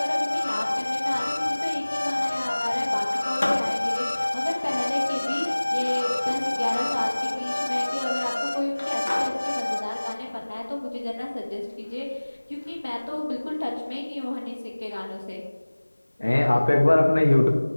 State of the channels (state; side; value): inverted; both; correlation -1.00